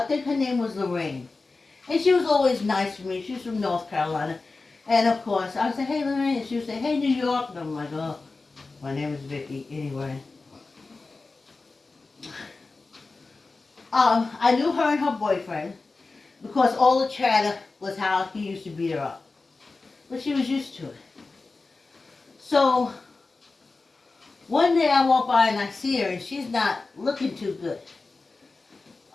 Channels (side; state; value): right; quieter; 3.7 dB